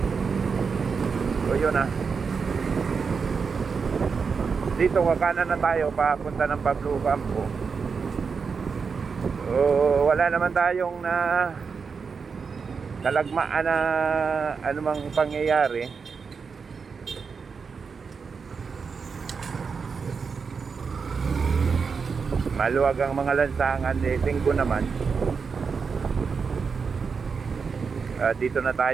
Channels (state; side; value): quieter; left; 5.5 dB